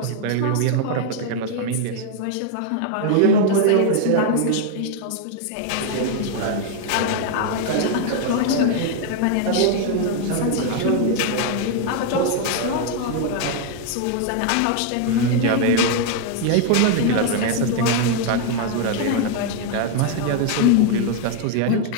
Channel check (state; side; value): different; both; correlation 0.00